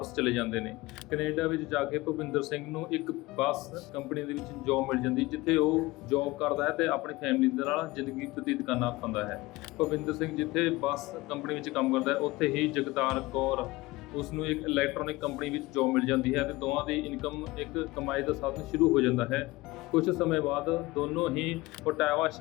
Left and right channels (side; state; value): right; quieter; 20.2 dB